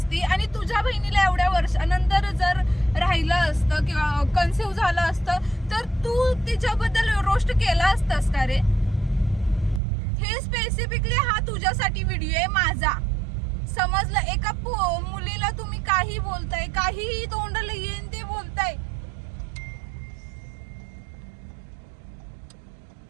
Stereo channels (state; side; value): drops out; left; at 9.8 s